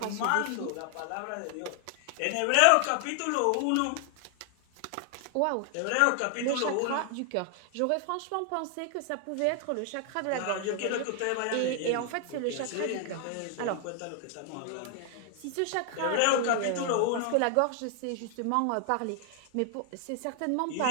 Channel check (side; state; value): both; different; correlation 0.00